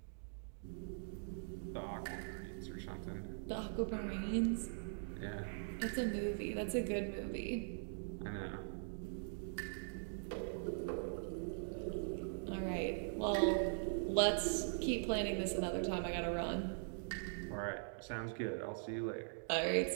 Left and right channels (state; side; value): silent; left; digital silence